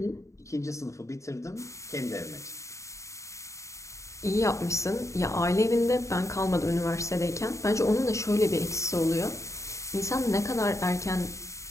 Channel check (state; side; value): late; right; 0.15 ms